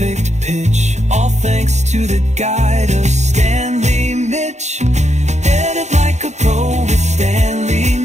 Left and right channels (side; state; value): left; late; 0.33 ms